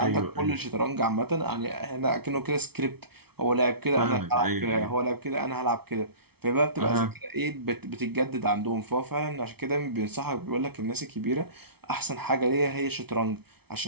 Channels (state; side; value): late; left; 0.96 ms